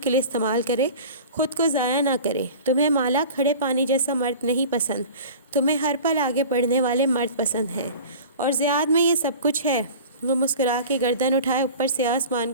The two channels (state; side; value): inverted; both; correlation -0.39